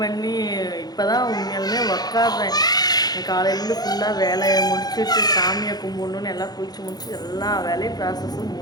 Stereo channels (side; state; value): right; late; 0.19 ms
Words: இப்போ தான் உண்மையாலுமே உக்காடுறேன். காலையிலேருந்து ஃபுல்லாக வேலையை முடிச்சுட்டு சாமியை கும்பிடணுன்னு எல்லாம் குளித்து முடிச்சு எல்லா வேலையும் ப்ராசஸும்